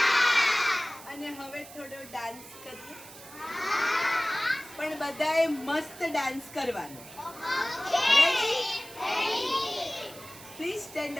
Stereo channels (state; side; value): noise; right; hiss, 17 dB below the sound